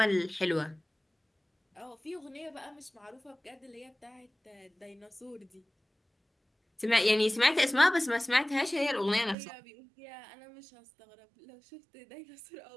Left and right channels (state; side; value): drops out; left; at 9.3 s